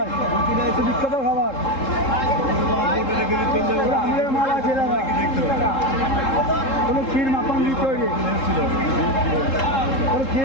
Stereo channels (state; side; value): late; right; 3.7 ms